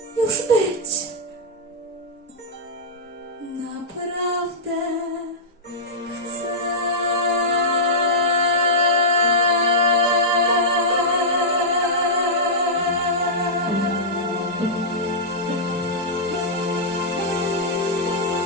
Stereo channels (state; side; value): normal; both; correlation -0.11